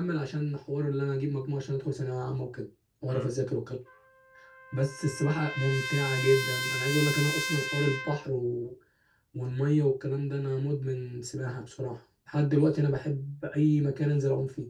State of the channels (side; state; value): both; identical; correlation 1.00